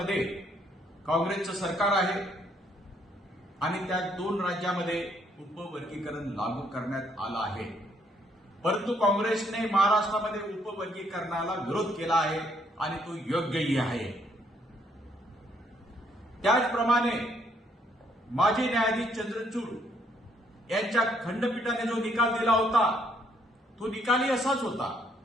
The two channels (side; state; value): both; normal; correlation 0.69